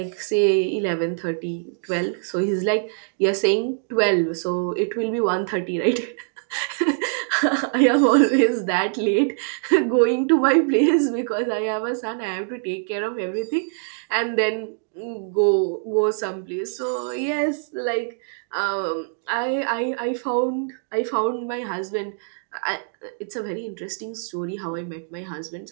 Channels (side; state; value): left; silent; digital silence